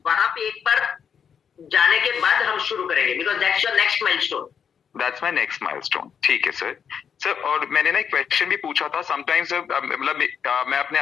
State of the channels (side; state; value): right; quieter; 7.4 dB